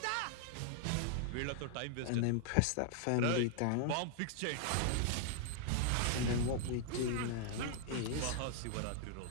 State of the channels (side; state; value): both; different; correlation 0.00